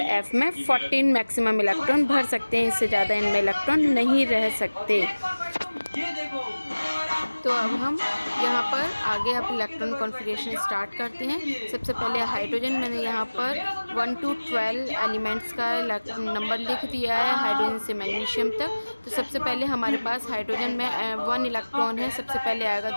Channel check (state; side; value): inverted; both; correlation -1.00